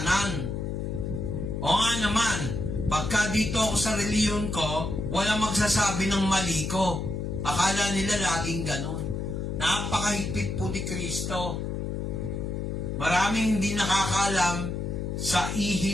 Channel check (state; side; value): noise; left; hum, 3 dB below the sound